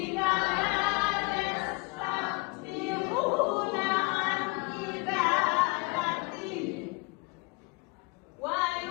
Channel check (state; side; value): quieter; right; 28.2 dB